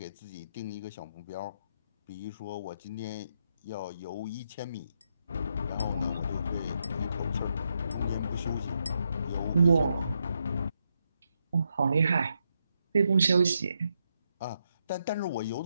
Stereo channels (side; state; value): both; inverted; correlation -0.81